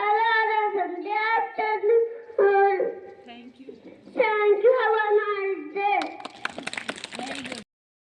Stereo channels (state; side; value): identical; both; correlation 1.00